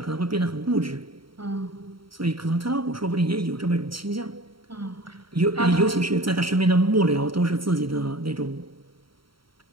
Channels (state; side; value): late; left; 0.74 ms